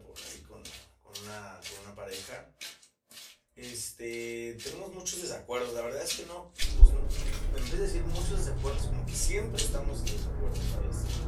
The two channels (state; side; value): identical; both; correlation 1.00